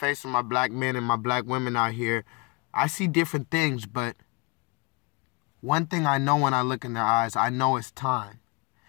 of my black men and my black women out here, I see different things, but one thing I know when I look in their eyes, I know it's time.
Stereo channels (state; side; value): quieter; right; 25.6 dB